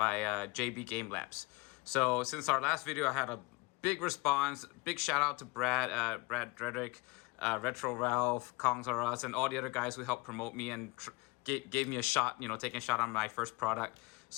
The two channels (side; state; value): right; quieter; 25.9 dB